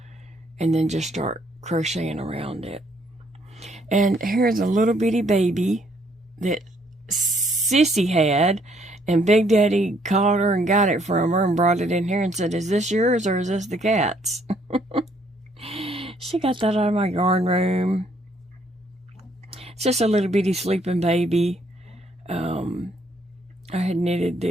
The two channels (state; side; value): normal; both; correlation 0.67